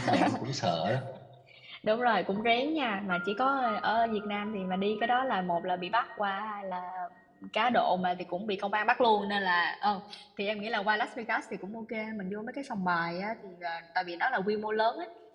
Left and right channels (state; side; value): identical; both; correlation 1.00